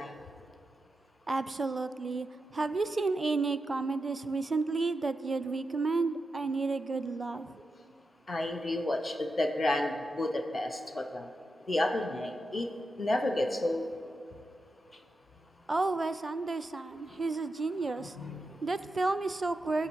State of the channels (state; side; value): normal; both; correlation 0.88